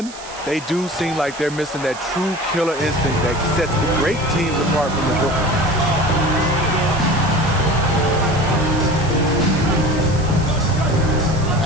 they do seem like they're missing that true killer instinct that sets the great teams apart from the good ones.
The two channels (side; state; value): right; noise; hiss, 16 dB below the sound